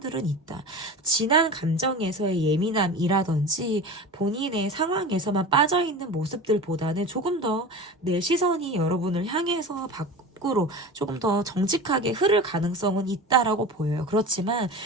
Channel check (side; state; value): both; normal; correlation 0.32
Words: 있다. 지난 감정에서의 예민함이라든지 본인의 상황에서만 빠져있는 모습들보다는 조금 더 내 시선이 여러분을 향해서 밖으로 조금 더 정직하게 흐를 가능성은 있다라고 보여요. 그렇지만